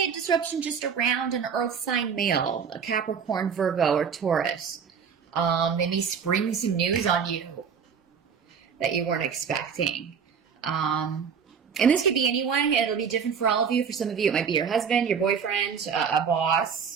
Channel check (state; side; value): quieter; left; 6.8 dB